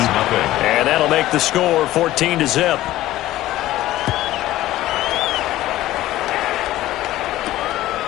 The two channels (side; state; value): right; quieter; 15.3 dB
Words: And that'll make the score 14-0.